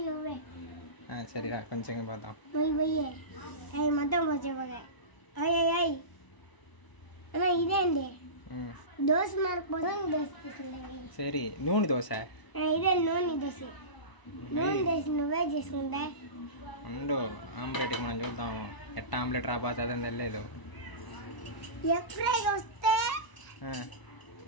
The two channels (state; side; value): late; right; 1.0 ms